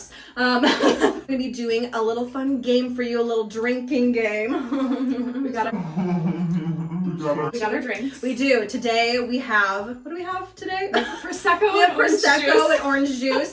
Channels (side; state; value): both; identical; correlation 1.00